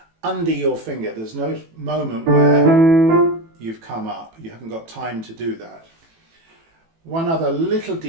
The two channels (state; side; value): late; left; 18 ms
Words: under your finger. There's no moment where you've come up. You haven't got time to do that. One other little